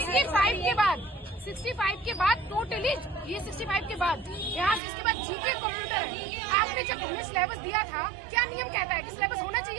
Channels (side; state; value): left; drops out; at 4.8 s